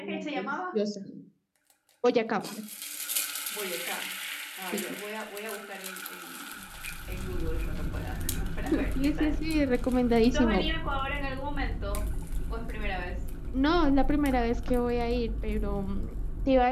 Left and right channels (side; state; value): both; identical; correlation 1.00